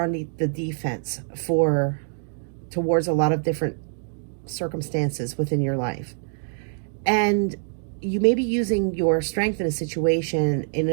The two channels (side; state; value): left; silent; digital silence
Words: on the defense towards a lot of different circumstances within your life. And you may be using your strength in a situation